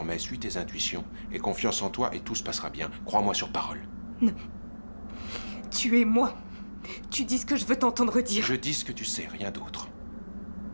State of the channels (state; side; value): inverted; both; correlation -1.00